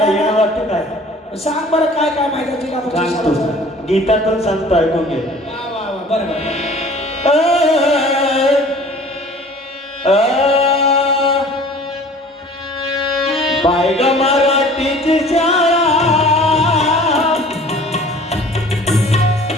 येणं वाटतं काय. सांग बरं काय काय माहिती आहे जिल्हा परिषद सांगतो, शाळेचं. गीतातून सांगतो, ऐकून घे. वा वा वा बरं बरं. बाय ग मराठीची शाळा,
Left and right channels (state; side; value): normal; both; correlation 0.48